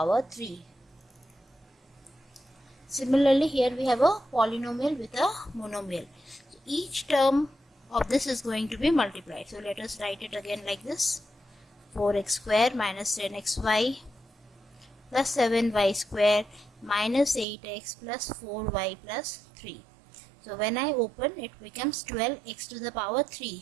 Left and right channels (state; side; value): drops out; left; at 17.4 s